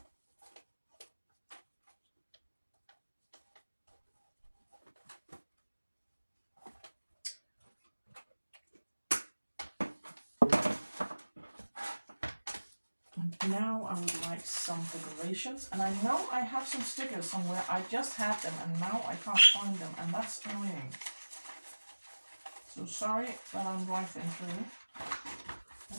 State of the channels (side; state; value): both; inverted; correlation -1.00